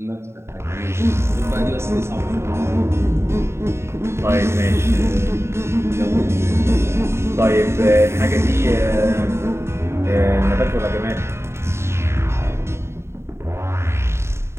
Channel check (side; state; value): left; late; 0.13 ms